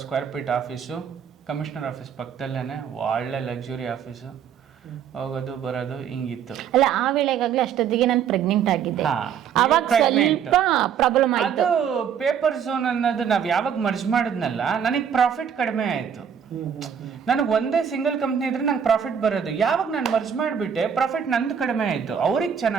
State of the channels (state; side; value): quieter; left; 8.0 dB